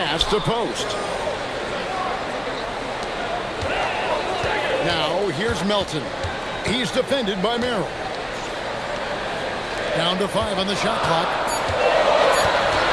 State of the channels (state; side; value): identical; both; correlation 1.00